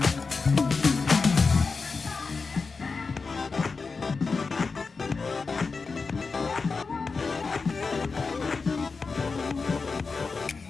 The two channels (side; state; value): right; quieter; 4.5 dB